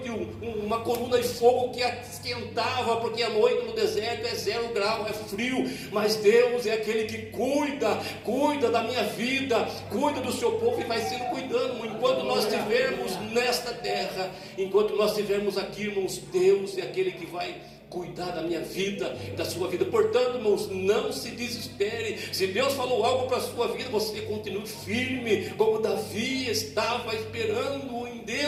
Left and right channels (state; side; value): identical; both; correlation 1.00